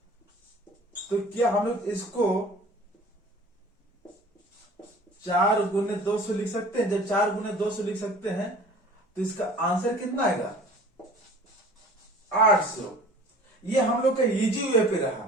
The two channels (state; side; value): normal; both; correlation 0.46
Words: तो क्या हम लोग इसको 4 गुने 200 लिख सकते हैं। जब 4 गुने 200 लिख सकते हैं तो इसका आंसर कितना आएगा 800। ये हम लोग का इजी वे पे